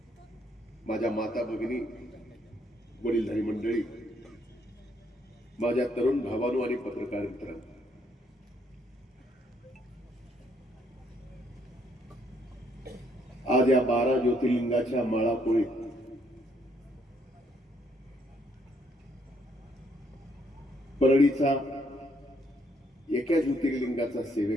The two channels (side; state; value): both; normal; correlation 0.70